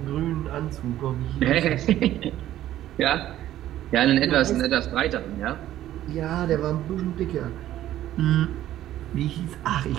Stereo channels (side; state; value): left; quieter; 13.1 dB